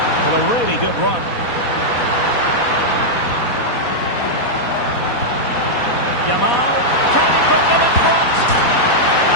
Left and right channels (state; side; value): late; right; 4.1 ms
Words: Well, a really good run. Yamal, can he put them in front?